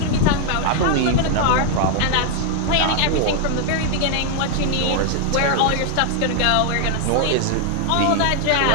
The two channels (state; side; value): different; both; correlation 0.01